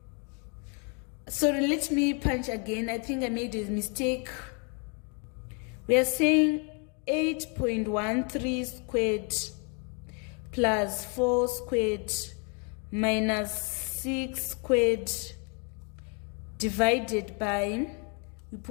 Sorry, let me punch again. I think I made a mistake. We are saying 8.13 squared plus 4 squared minus 6 squared divided by, we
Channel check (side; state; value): right; quieter; 36.7 dB